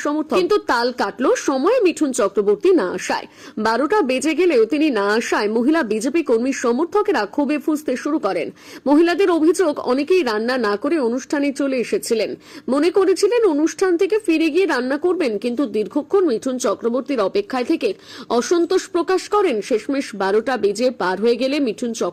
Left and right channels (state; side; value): identical; both; correlation 1.00